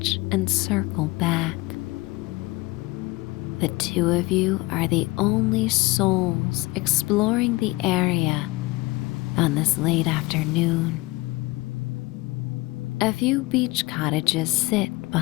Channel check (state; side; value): quieter; right; 21.7 dB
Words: and circle back. The two of you are the only souls exploring the area on this late afternoon. A few beach cottages sit